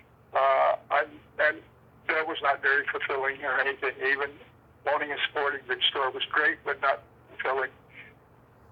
And that was not very fulfilling or anything. Even owning a sporting goods store was great, but not fulfilling.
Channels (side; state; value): both; identical; correlation 1.00